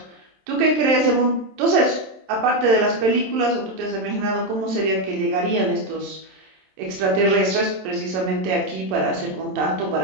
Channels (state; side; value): late; left; 27 ms